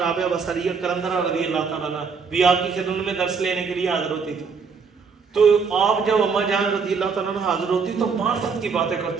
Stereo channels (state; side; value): quieter; left; 5.4 dB